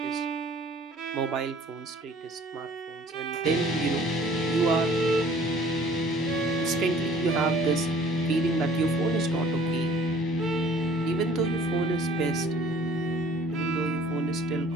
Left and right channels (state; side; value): normal; both; correlation 0.53